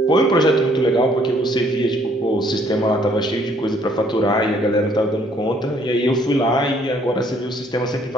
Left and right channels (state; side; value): normal; both; correlation 0.64